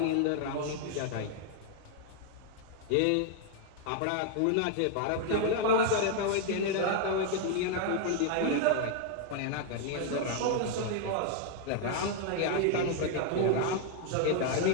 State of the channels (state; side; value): different; both; correlation 0.00